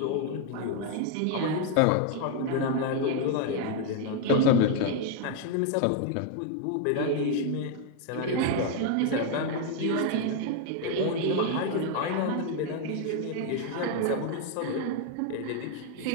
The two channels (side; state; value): both; different; correlation 0.00